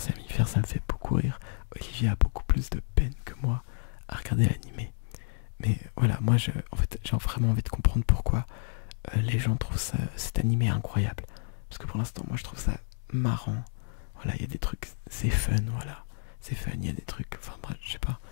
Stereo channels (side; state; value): right; silent; 58 dB below the other